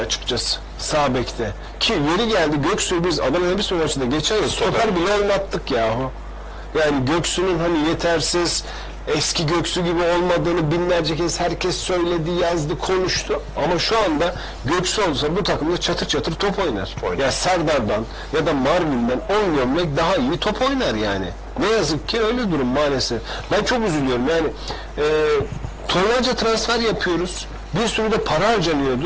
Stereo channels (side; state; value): both; identical; correlation 1.00